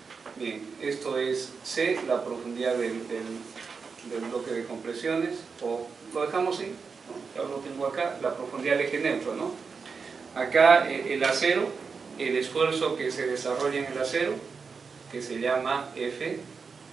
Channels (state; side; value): quieter; left; 5.2 dB